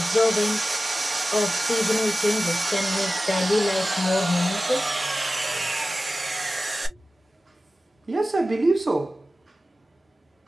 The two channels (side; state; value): both; normal; correlation 0.95